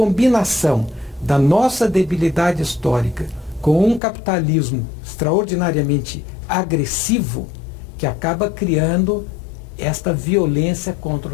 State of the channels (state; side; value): drops out; right; at 4.0 s